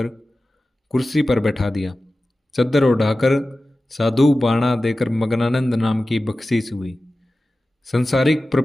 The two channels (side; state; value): both; normal; correlation 0.95